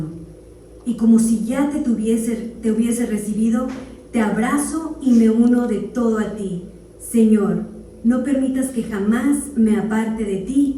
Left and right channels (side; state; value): both; identical; correlation 1.00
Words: Y como si ya te hubiese recibido, te abrazo y me uno de todo a ti. Señor, no permitas que jamás me aparte de